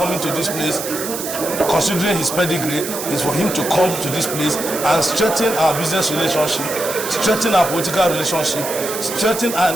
to this place, considering his pedigree, is for him to come to this place and strengthen our business relationship, strengthen our political relationship, strengthen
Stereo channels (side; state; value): right; noise; hiss, 7 dB below the sound